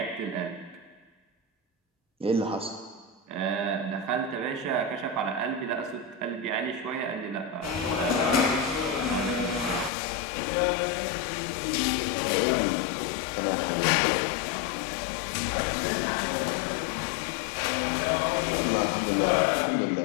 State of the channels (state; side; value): drops out; right; at 9.9 s